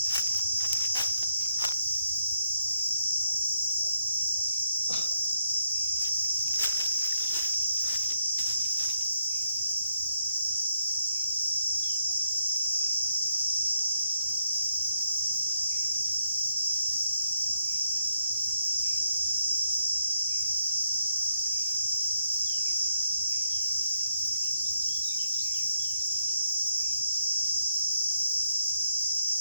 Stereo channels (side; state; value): both; inverted; correlation -0.79